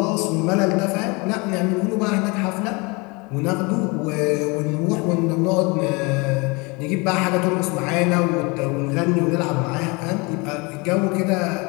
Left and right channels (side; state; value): right; quieter; 27.7 dB